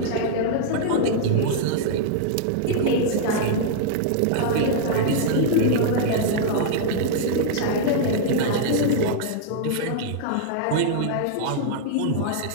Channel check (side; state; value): both; different; correlation -0.01